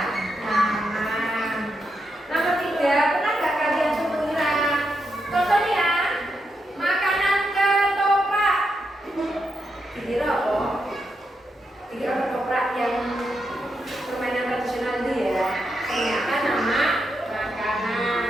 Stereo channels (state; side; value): normal; both; correlation 0.83